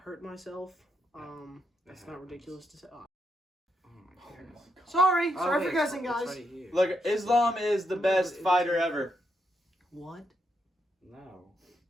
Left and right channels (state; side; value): normal; both; correlation 0.81